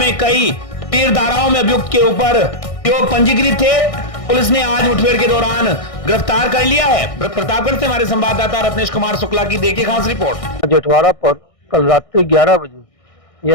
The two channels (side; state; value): right; late; 1.6 ms